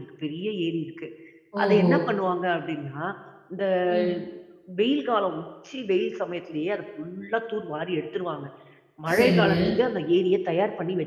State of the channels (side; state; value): both; identical; correlation 1.00